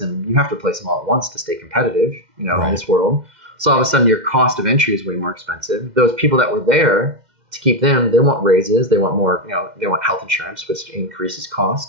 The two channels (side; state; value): left; late; 2.1 ms